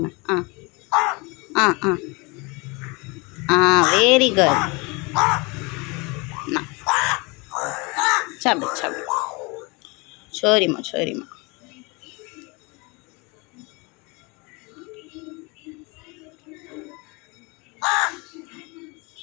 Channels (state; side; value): quieter; right; 27.8 dB